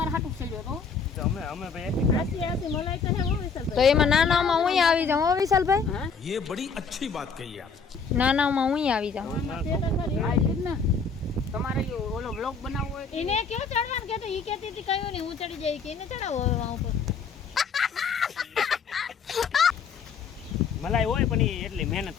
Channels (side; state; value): right; quieter; 5.4 dB